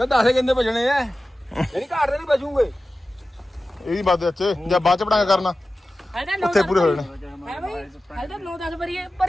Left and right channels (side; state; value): both; normal; correlation 0.95